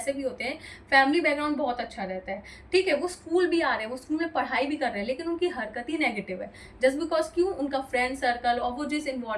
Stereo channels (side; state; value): both; identical; correlation 1.00